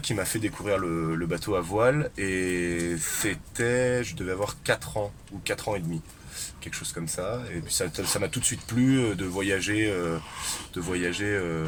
qui m'a fait découvrir le bateau à voile et je devais avoir 4 ans ou 4 ans et demi, quelque chose comme ça. Et puis ça m'a tout de suite plu de voyager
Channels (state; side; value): identical; both; correlation 1.00